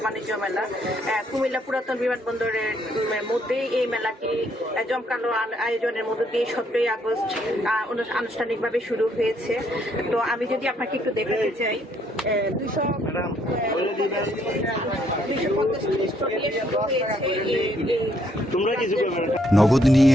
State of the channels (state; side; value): normal; both; correlation 0.70